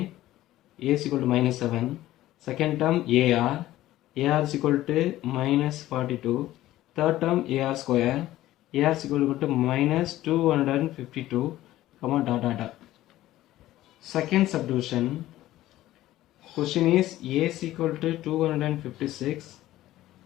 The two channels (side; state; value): right; quieter; 15.0 dB